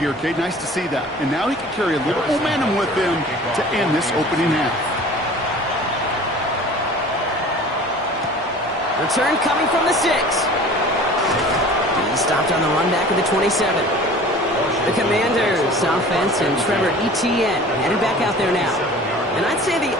Kate. Nice to see that. And now he can carry a little momentum with him to end this opening half. Return coming from the 6. He stopped on the run back of the 27. The Commanders, offense, and Trevor Etienne headed back out there now. And I'd say the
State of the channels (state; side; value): normal; both; correlation 0.44